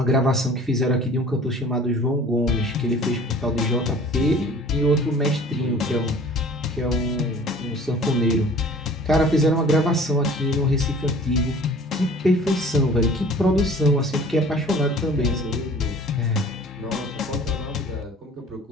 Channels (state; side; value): normal; both; correlation 0.47